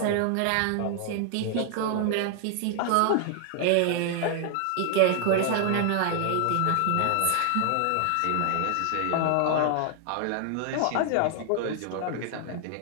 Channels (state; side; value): different; both; correlation 0.00